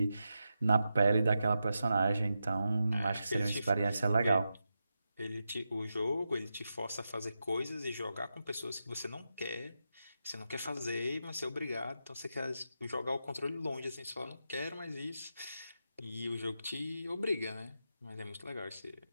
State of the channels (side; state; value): both; inverted; correlation -0.88